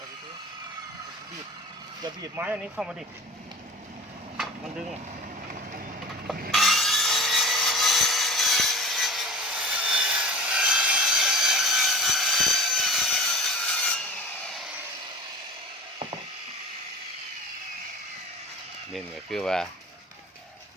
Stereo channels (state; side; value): normal; both; correlation 0.39